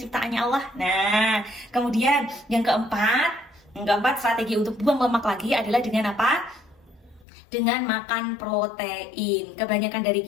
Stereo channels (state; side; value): drops out; right; at 7.2 s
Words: Allah. Nah, kemudian yang keempat strategi untuk buang lemak lagi adalah dengan apa? Dengan makan protein. Kebanyakan dari